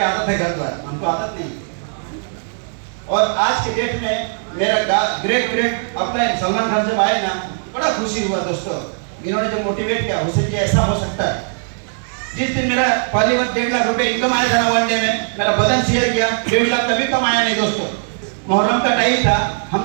आदत है घर पर, हमको आदत नहीं। और आज के डेट में मेरा ग्रेट अपलाइन सलमान खान जब आए ना, बड़ा खुशी हुआ दोस्तों। इन्होंने जो मोटिवेट किया हुसैन जी ऐसा हो सकता है। जिस दिन मेरा पहली बार 1.5 लाख रुपए इनकम आया था ना वन डे में, मेरा बदन शेयर किया, 1.5 लाख कभी कमाया नहीं दोस्तों। मुहर्रम का टाइम था,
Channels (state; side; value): silent; left; digital silence